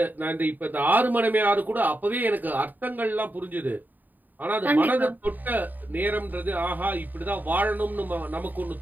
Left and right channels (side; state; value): left; late; 0.087 ms